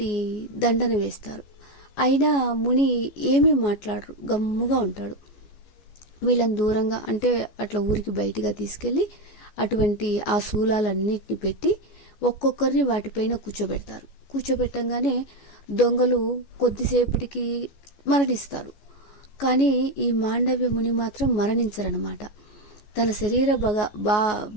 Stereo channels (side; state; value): right; late; 14 ms